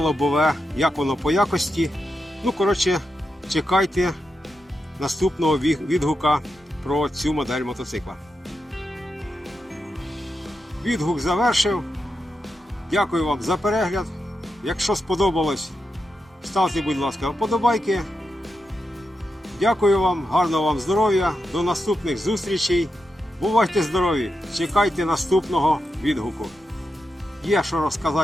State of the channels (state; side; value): normal; both; correlation 0.87